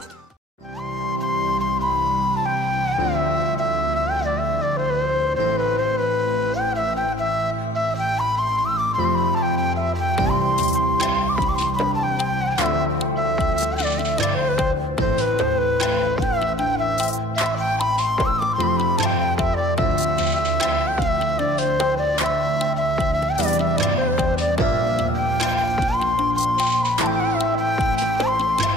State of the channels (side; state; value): both; normal; correlation 0.55